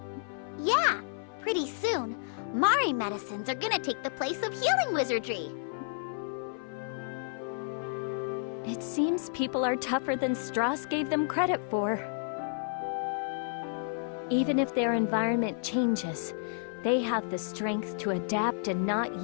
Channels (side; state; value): right; silent; 55 dB below the other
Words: Yeah, pretty soon, Mari medicines are gonna take the place of healing wizardry. It seems people are tougher than Strauss gave them credit for. Even if their environment changes, they have the strength to adapt and not